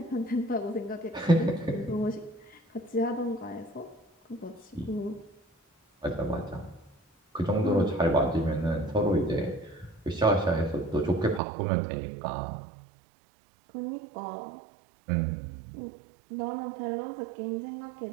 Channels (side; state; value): left; drops out; at 11.4 s